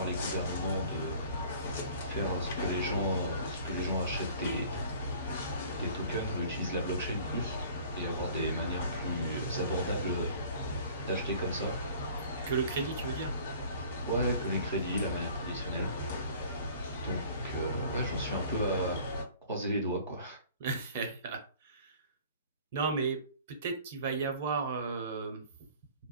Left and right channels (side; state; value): both; inverted; correlation -0.49